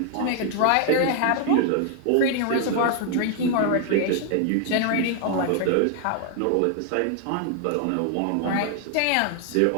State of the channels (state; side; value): different; both; correlation 0.00